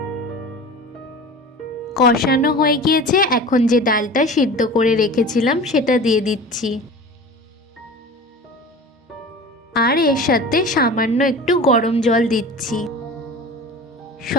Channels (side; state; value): both; normal; correlation 0.36